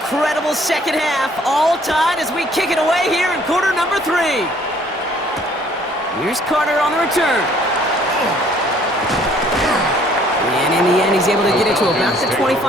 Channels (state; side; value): normal; both; correlation 0.60